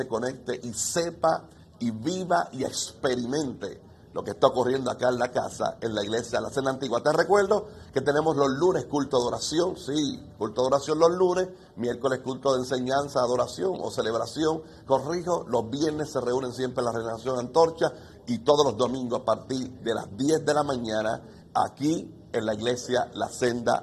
conecte y sepa y viva y experimente lo que está ocurriendo acá en la casa, en la iglesia de la Senda Antigua. Te recuerdo que tenemos los lunes culto de oración, sí, culto de oración los lunes, miércoles culto de enseñanza, adoración o celebración, corrijo, los viernes se reúnen siempre en la Renovación Antorcha y todos los domingos a partir de las 10 de la mañana aquí en la iglesia La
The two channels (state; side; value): identical; both; correlation 1.00